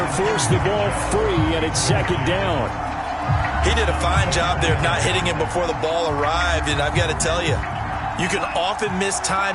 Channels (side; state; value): both; identical; correlation 1.00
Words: forced the ball free, and it's second down. He did a fine job there of not hitting him before the ball arrived, and I've got to tell you, you can often